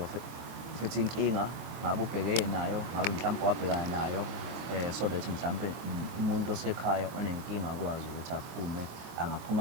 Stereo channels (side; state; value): left; late; 24 ms